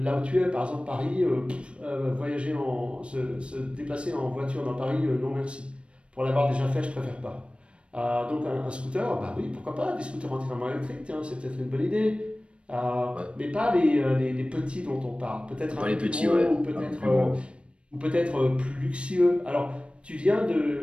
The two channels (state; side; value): late; left; 0.059 ms